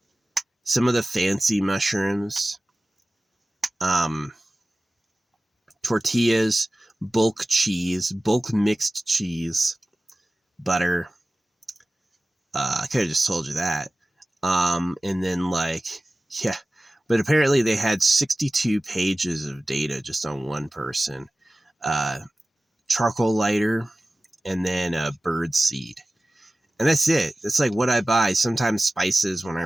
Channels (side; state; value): both; normal; correlation 0.96